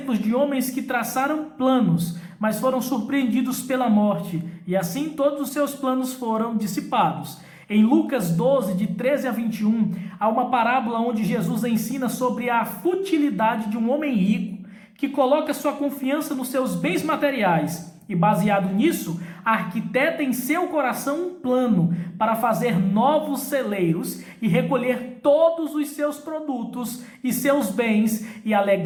de homens que traçaram planos, mas foram surpreendidos pela morte, e assim todos os seus planos foram dissipados. Em Lucas 12, de 13 a 21, há uma parábola onde Jesus ensina sobre a futilidade de um homem rico que coloca sua confiança nos seus bens materiais e, baseado nisso, arquiteta em seu coração um plano para fazer novos celeiros e recolher todos os seus produtos e seus bens e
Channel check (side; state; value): both; identical; correlation 1.00